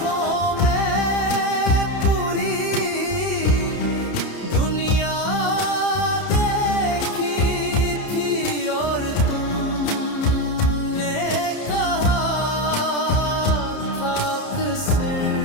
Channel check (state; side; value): late; right; 30 ms